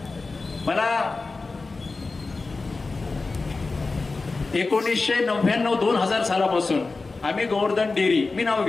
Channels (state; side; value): quieter; right; 3.8 dB